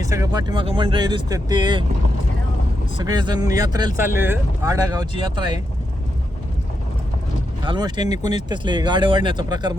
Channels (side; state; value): both; normal; correlation 0.84